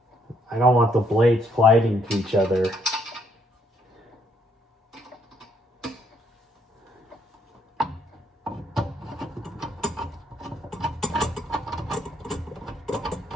I don't want the blades colliding to each other.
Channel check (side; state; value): both; normal; correlation 0.70